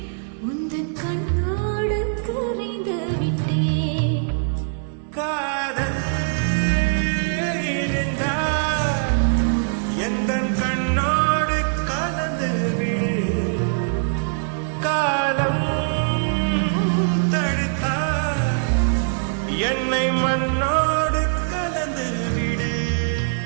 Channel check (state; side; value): silent; left; digital silence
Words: உந்தன் கண்ணோடு கரைந்து விட்டேன். காதல் இருந்தால் எந்தன் கண்ணோடு கலந்து விடு. காலம் தடுத்தால் என்னை மண்ணோடு கலந்து விடு.